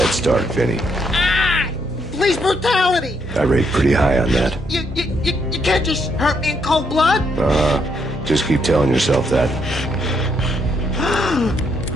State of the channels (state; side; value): normal; both; correlation 0.75